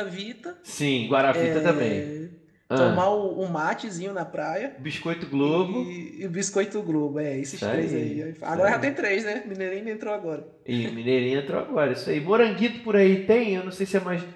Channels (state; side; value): identical; both; correlation 1.00